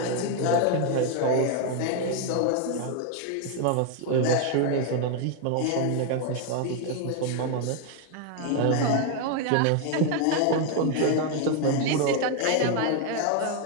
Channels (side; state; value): both; different; correlation 0.01